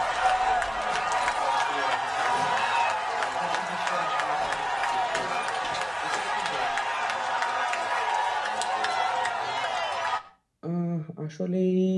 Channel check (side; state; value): both; identical; correlation 1.00